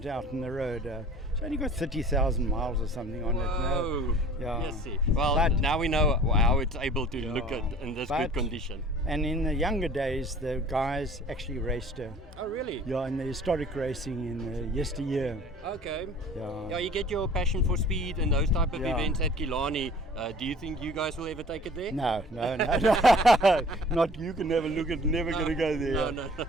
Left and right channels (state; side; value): normal; both; correlation 0.49